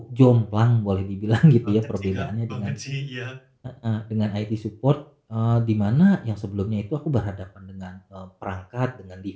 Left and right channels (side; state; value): both; identical; correlation 1.00